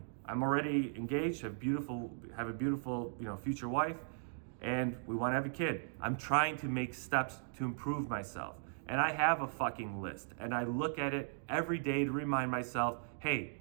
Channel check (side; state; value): left; silent; digital silence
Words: I'm already engaged, have a beautiful, future wife, and we want to have a kid. I'm trying to make steps to improve myself. And I have a fucking list, and I look at it every day to remind myself, hey,